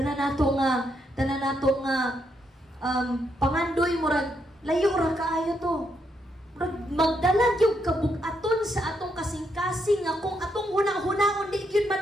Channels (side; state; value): both; normal; correlation 0.78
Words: nato nga pangandoy murag layo ra kaayo to. Murag magdala gyud kabug-aton sa atong kasing-kasing nga kung atong huna-hunaon di gyud